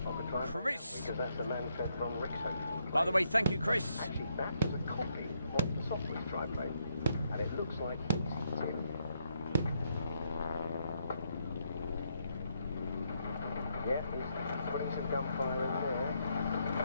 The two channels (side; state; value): both; inverted; correlation -0.76